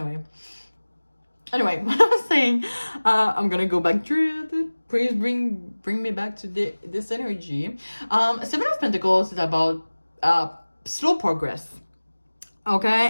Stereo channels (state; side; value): inverted; both; correlation -1.00